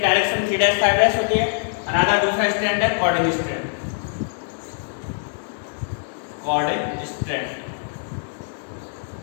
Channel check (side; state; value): right; silent; digital silence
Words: डायरेक्शन 3' 5' होती है। अनदर दूसरा स्ट्रैंड है कोडिंग स्ट्रैंड, कोडिंग स्ट्रैंड